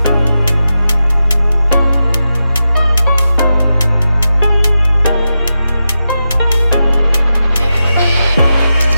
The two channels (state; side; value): inverted; both; correlation -0.90